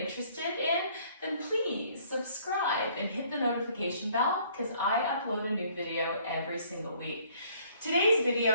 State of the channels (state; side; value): inverted; both; correlation -0.61